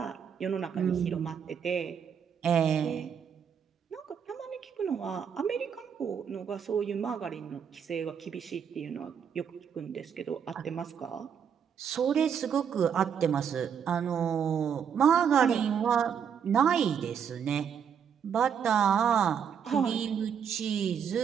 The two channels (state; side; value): quieter; left; 7.6 dB